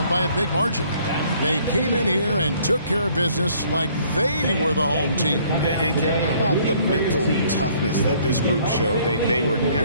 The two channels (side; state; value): both; inverted; correlation -0.61